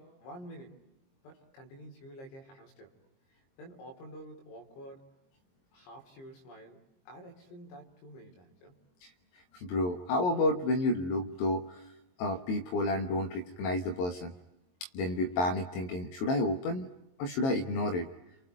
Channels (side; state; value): right; late; 22 ms